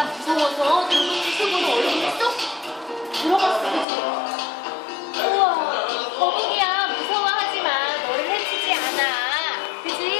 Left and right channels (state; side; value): drops out; right; at 3.9 s